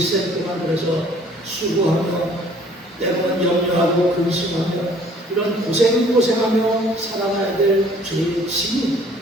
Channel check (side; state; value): both; normal; correlation 0.56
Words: 동안 그래서 수고하며 때로는 염려하고 근심하며 이런 고생하며 살아가야 될 죄의 짐이